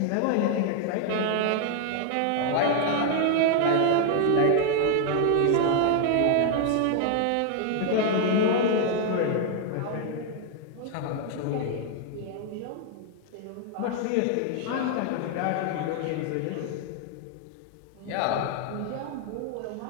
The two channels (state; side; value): different; both; correlation 0.00